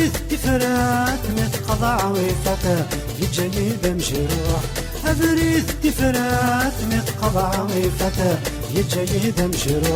تفرات متقضى عويفته يجني بمجروح أبريد تفرات متقضى عويفته يجني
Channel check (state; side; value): identical; both; correlation 1.00